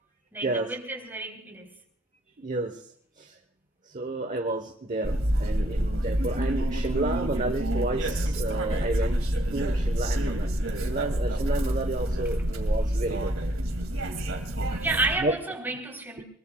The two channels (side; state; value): both; normal; correlation 0.65